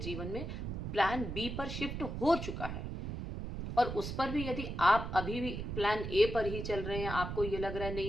में प्लान बी पर शिफ्ट हो चुका है, और उस पर भी यदि आप अभी भी प्लान ए पर ही चल रहे हैं, आपको ये लग रहा है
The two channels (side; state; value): right; noise; rumble, 5 dB below the sound